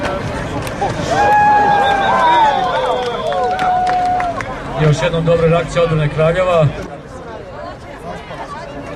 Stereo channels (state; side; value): identical; both; correlation 1.00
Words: Još jednom dobra reakcija odbrane Kraljeva.